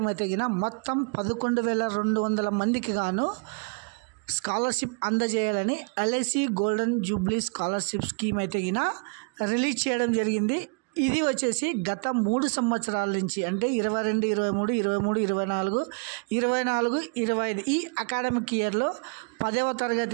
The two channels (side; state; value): left; quieter; 38.2 dB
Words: అయితే మొత్తం 11,200 మందికి గాను స్కాలర్షిప్ అందజేయాలని LIC golden Jubilee scholarship scheme అయితే రిలీజ్ చేయడం జరిగింది. ఇది వచ్చేసి గత 3 సంవత్సరాల నుంచి అంటే 22, 23, 23, 24, 25 ఈ అకాడమిక్ ఇయర్లో 10వ